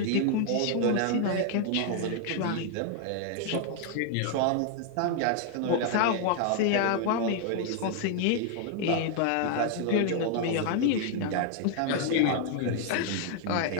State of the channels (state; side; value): different; both; correlation 0.00